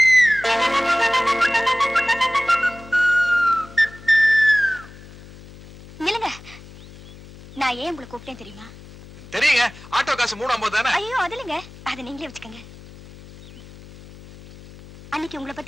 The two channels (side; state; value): left; noise; hum, 19 dB below the sound